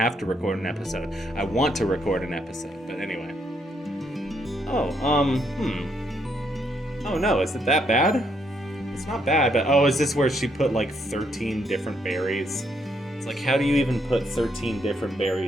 to record an episode. I want to record an episode, but anyway. Oh no, is it that bad? It's not bad, but is this where she put 13 different berries? It's like, how do you even put 13 different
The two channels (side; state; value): both; normal; correlation 0.74